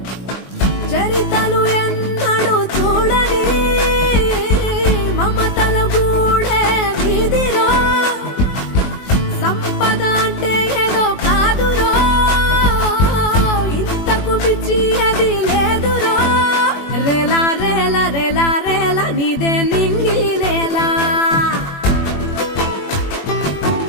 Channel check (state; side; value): late; right; 21 ms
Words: చరితలు ఎన్నడు చూడని మమతల గూడే వీధిలో, సంపద అంటే ఏదో కాదురో, ఇంతకు మించి అది లేదురో. రేలా రేలా రేలా రేలా నీదే నింగి నేలా,